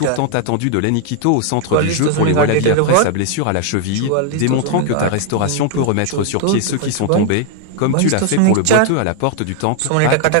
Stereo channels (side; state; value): both; different; correlation 0.00